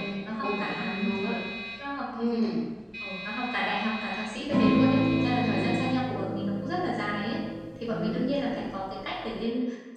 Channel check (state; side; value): identical; both; correlation 1.00